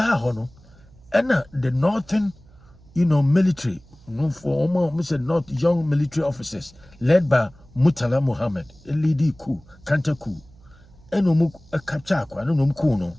Hono. And the northern, military, for almost North young military officers led by Murtala Muhammad, a lady coup, counter coup, and a capture,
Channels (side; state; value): right; noise; hum, 26 dB below the sound